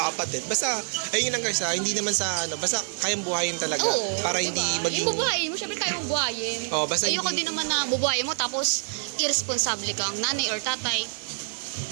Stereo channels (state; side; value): silent; left; 55 dB below the other